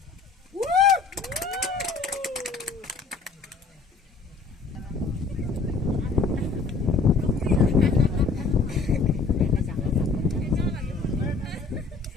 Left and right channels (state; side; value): quieter; right; 4.3 dB